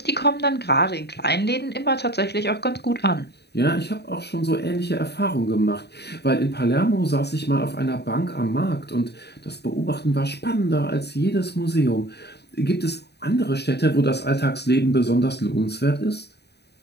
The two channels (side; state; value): right; late; 0.48 ms